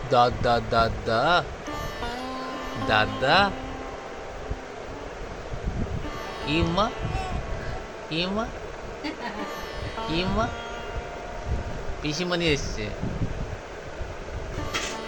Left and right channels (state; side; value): identical; both; correlation 1.00